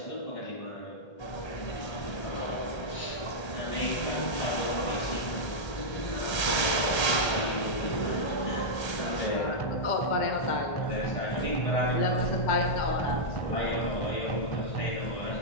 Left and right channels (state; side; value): late; right; 1.3 ms